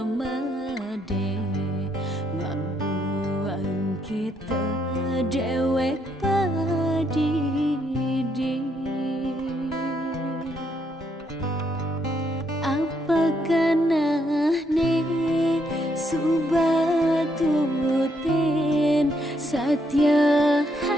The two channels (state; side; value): normal; both; correlation 0.74